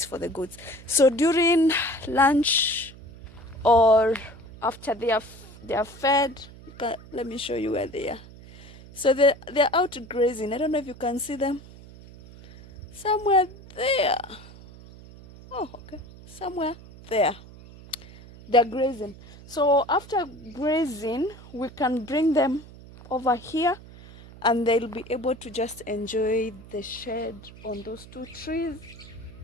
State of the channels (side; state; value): right; noise; hum, 19 dB below the sound